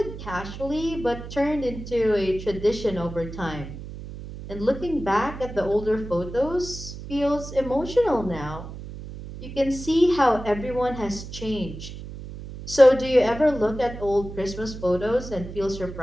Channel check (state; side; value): noise; right; hum, 11 dB below the sound